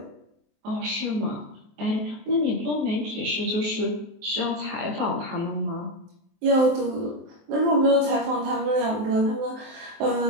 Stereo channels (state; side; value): late; left; 23 ms